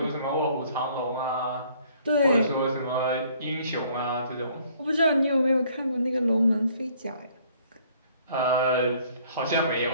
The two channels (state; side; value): inverted; both; correlation -0.61